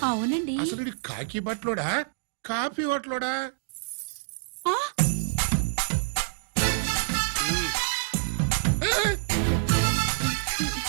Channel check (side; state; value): left; silent; digital silence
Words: అవునండి. అసలు కాకి బట్టలోడా కాఫీ బట్టలోడా?